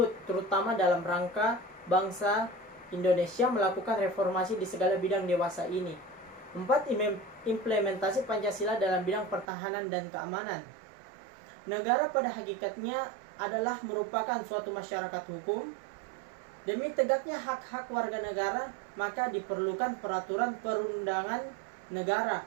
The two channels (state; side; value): drops out; left; at 9.5 s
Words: terutama dalam rangka bangsa Indonesia melakukan reformasi di segala bidang dewasa ini. 4. Implementasi Pancasila dalam bidang pertahanan dan keamanan. Negara pada hakikatnya adalah merupakan suatu masyarakat hukum. Demi tegaknya hak-hak warga negara, maka diperlukan peraturan perundangan negara,